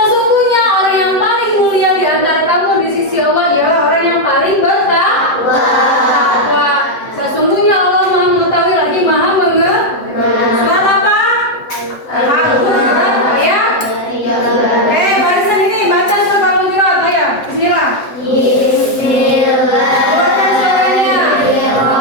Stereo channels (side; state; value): right; late; 7.8 ms